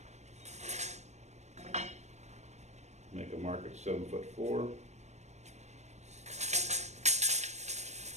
make a mark at 7'4".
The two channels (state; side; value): late; left; 0.33 ms